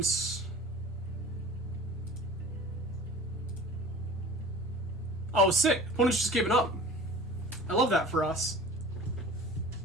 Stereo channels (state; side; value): normal; both; correlation 0.41